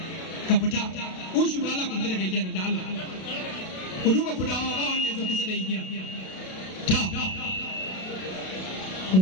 ka fita ushu da Allah ku fita daga igiyar da Allah ku duba ku dawo ba wanda ya zo kusa da igiya ta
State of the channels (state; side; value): late; right; 32 ms